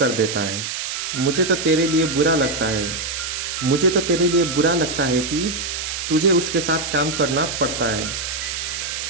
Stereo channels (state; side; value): noise; right; hiss, 4 dB below the sound